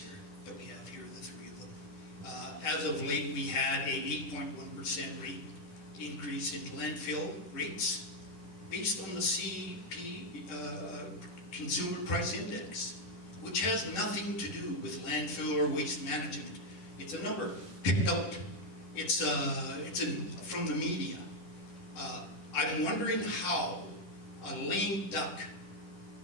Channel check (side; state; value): right; late; 10 ms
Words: that we have here, the three of them. As of late, we had a 8.1% rate increase in landfill rates based on the Consumer Price Index, which has nothing to do with landfill or waste management. It's a number picked out. It's from the media. I'm wondering how a lame duck